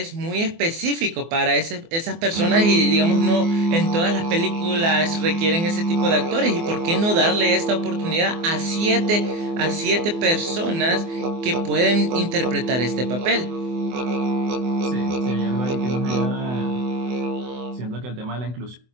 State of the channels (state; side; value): late; left; 24 ms